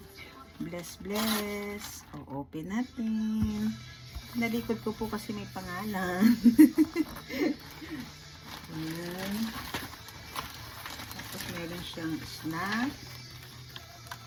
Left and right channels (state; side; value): identical; both; correlation 1.00